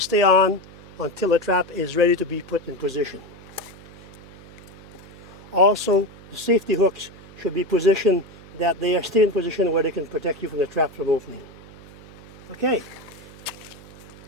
on until the trap is ready to be put in position. Also, the safety hooks should be positioned that they are still in position where they can protect you from the trap from opening. Okay.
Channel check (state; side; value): noise; right; hum, 19 dB below the sound